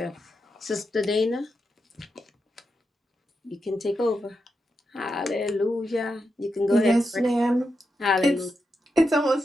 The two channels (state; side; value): normal; both; correlation 0.86